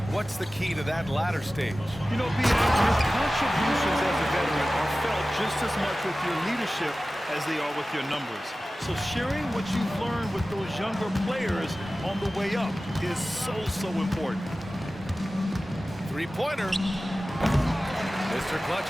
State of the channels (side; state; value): both; normal; correlation 0.96